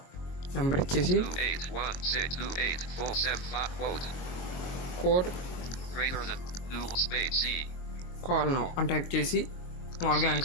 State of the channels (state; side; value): late; right; 22 ms